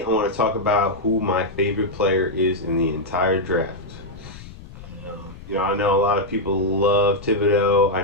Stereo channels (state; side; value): noise; left; rumble, 17 dB below the sound